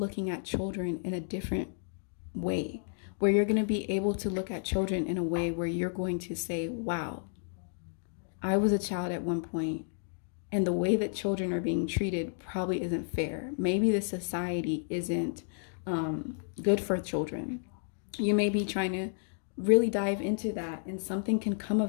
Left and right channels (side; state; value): right; silent; digital silence